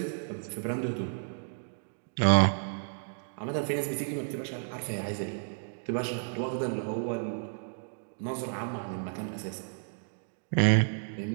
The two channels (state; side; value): silent; left; digital silence